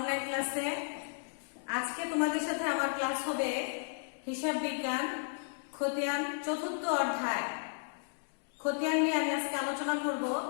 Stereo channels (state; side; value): silent; right; digital silence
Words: ক্লাসে। আজকে তোমাদের সাথে আমার ক্লাস হবে হিসাব বিজ্ঞান খতিয়ান চতুর্থ অধ্যায়। খতিয়ান নিয়ে আমি আজকে আলোচনা করব।